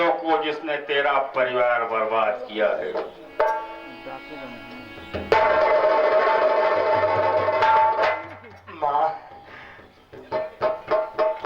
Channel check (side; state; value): both; identical; correlation 1.00